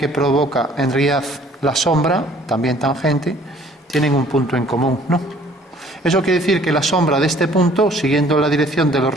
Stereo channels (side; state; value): both; normal; correlation 0.56